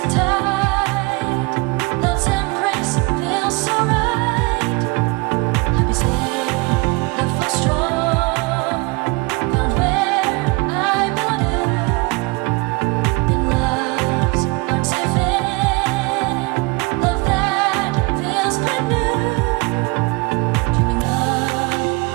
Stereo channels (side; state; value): left; quieter; 26.5 dB